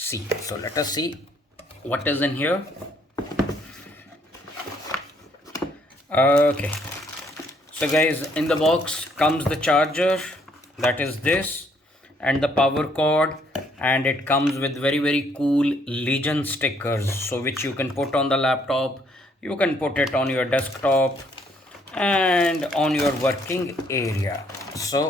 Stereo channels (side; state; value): both; normal; correlation 0.67